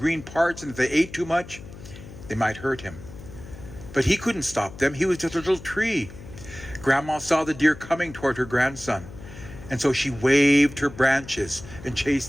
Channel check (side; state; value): left; noise; hum, 16 dB below the sound